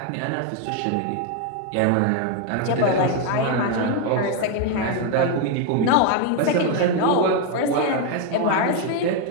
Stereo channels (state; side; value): different; both; correlation 0.01